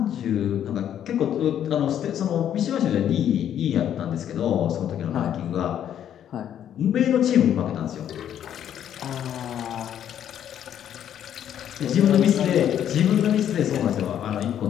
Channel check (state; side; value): quieter; right; 10.1 dB